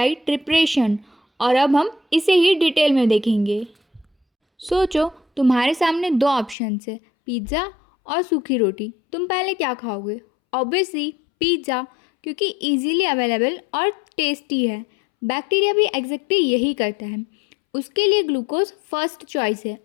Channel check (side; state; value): right; drops out; at 6.6 s